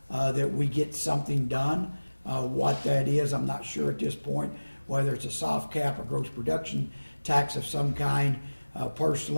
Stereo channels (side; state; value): both; inverted; correlation -1.00